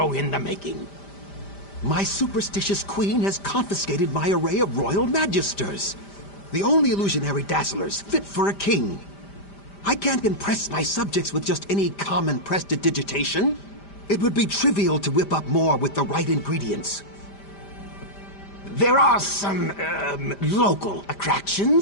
in the making. My superstitious queen has confiscated my array of royal magisters, the only illusionary dazzlers fit for a king. I can't impress my subjects with just any common prestidigitation. It would be trivial to whip up more with the right ingredients. There are some, local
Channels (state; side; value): late; right; 5.0 ms